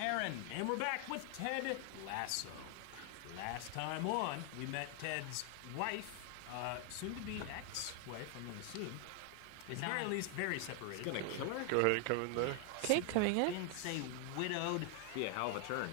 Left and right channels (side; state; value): both; different; correlation 0.00